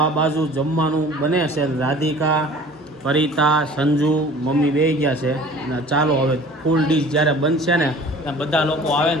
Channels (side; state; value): both; normal; correlation 0.46